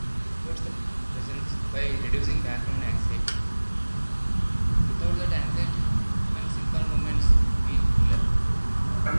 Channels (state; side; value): inverted; both; correlation -1.00